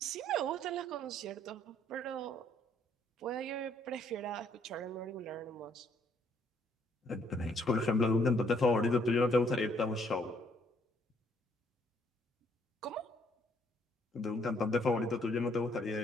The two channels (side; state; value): both; normal; correlation 0.66